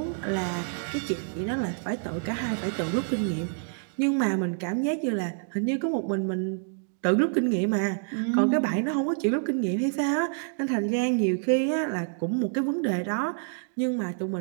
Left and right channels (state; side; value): silent; left; digital silence